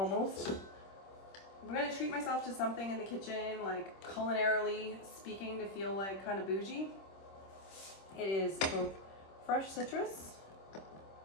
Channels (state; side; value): late; right; 26 ms